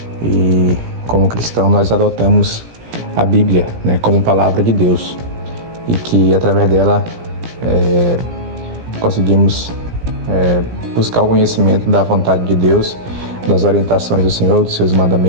E como cristão nós adotamos a Bíblia, como palavra de Deus, e que através dela conseguimos buscar o conhecimento da vontade de Deus, das orientações do Senhor, dos seus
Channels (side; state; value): left; late; 17 ms